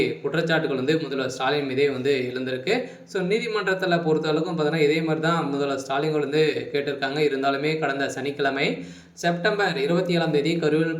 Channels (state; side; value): identical; both; correlation 1.00